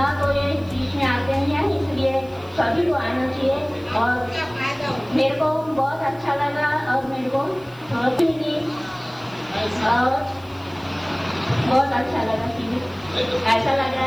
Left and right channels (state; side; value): noise; right; hiss, 28 dB below the sound